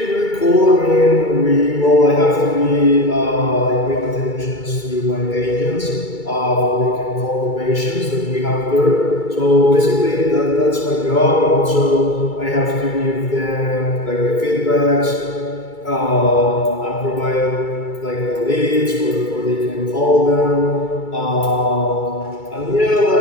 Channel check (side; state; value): right; late; 2.3 ms